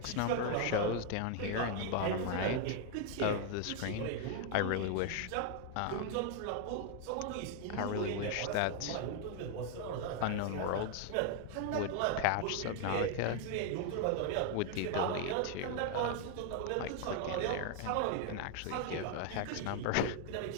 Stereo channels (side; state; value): both; different; correlation 0.00